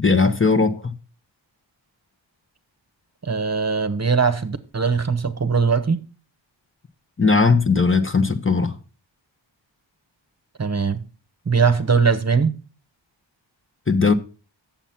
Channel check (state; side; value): normal; both; correlation 0.44